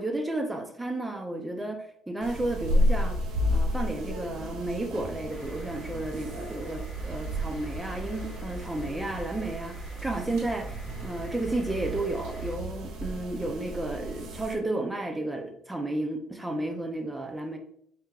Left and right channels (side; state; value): both; normal; correlation 0.78